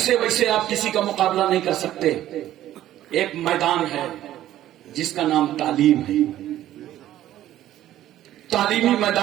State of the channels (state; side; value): quieter; left; 13.1 dB